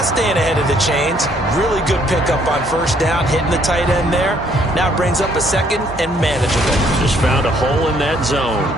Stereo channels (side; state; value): both; normal; correlation 0.66